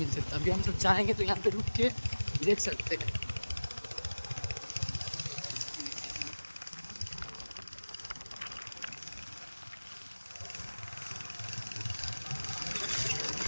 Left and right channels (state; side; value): inverted; both; correlation -1.00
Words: सकता है। अभी हम सब चाहेंगे तो यहाँ पे रुक के देख सकते हैं।